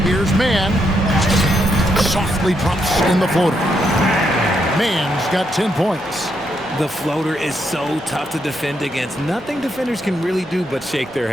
Here's Mann. Softly drops in the floater. Mann's got 10 points. The floater is so tough to defend against. Nothing defenders can really do but shake their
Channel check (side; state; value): both; normal; correlation 0.78